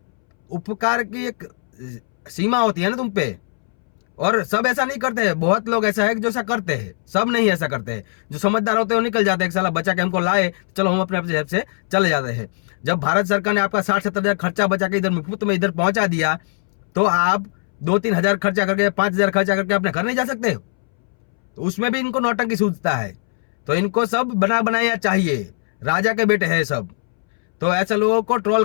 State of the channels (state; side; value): silent; right; 65 dB below the other